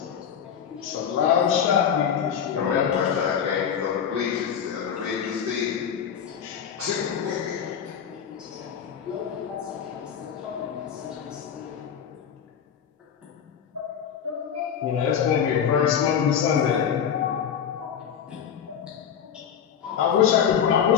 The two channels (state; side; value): quieter; right; 8.2 dB